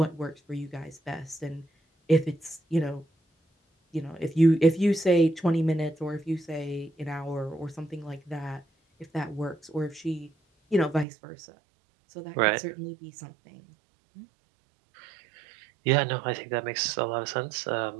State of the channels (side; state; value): left; drops out; at 11.1 s